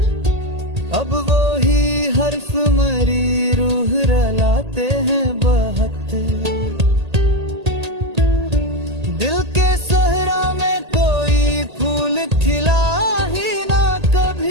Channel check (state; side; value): late; left; 1.8 ms